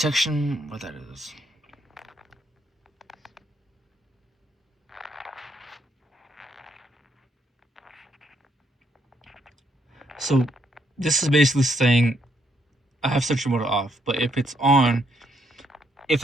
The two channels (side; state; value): both; normal; correlation 0.74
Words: what that is. So, this is basically saying I have Sentry mode off, but if it's on, if